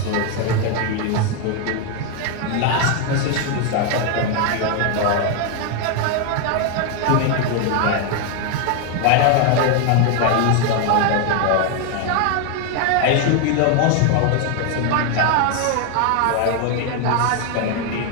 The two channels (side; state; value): both; different; correlation 0.01